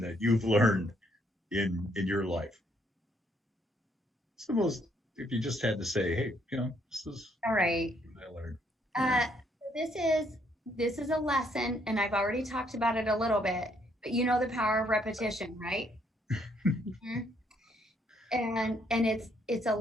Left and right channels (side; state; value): both; normal; correlation 0.70